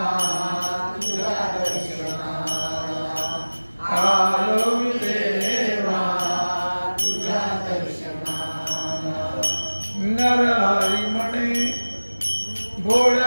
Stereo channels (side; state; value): both; inverted; correlation -1.00